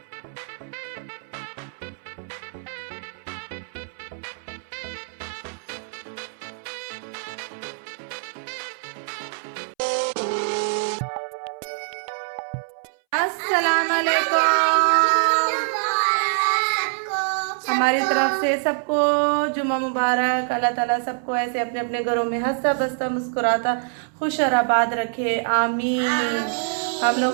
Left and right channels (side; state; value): left; silent; 62 dB below the other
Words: अस्सलाम वालेकुम। हमारी तरफ से सबको जुम्मा मुबारक। अल्लाह ताला सबको ऐसे अपने अपने घरों में हंसता बसता मुस्कुराता खुश और आबाद रखे, आमीन। हम